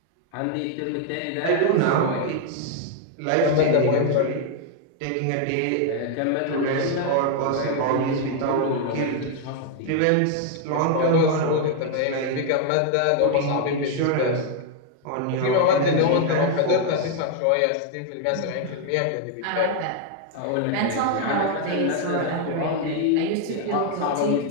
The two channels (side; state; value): both; different; correlation 0.00